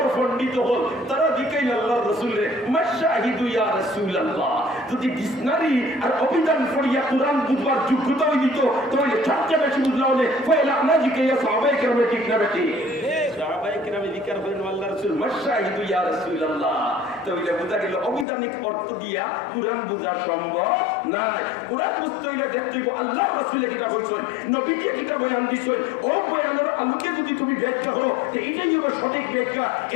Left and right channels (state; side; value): drops out; right; at 18.2 s